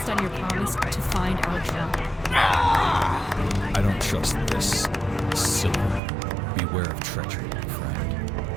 on your promise to find our Trump. I don't trust this. Silver. Beware of treachery, my friend.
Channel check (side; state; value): left; drops out; at 6.0 s